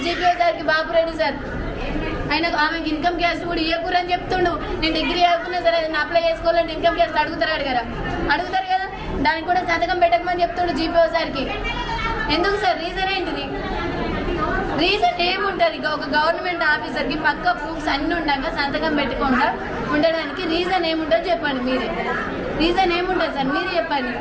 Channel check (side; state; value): both; identical; correlation 1.00